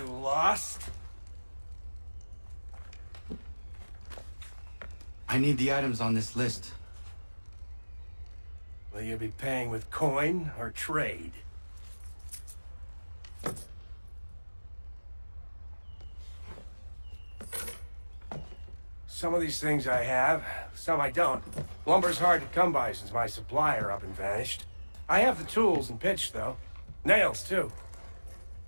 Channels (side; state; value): both; inverted; correlation -1.00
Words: lost? I need the items on this list. Will you be paying with coin or trade? Some of these things I have, some I don't. Lumber's hard to come by since my supplier up and vanished. I have the tools and pitch, though. Nails, too.